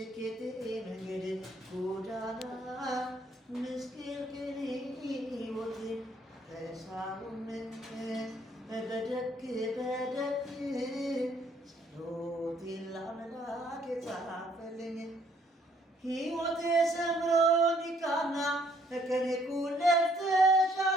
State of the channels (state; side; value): normal; both; correlation 0.65